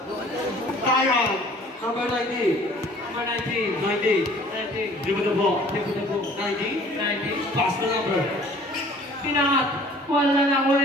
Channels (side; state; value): both; normal; correlation 0.52